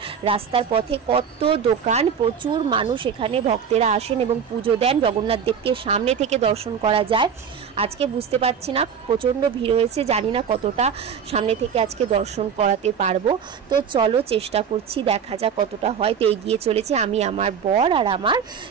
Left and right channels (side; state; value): left; quieter; 7.2 dB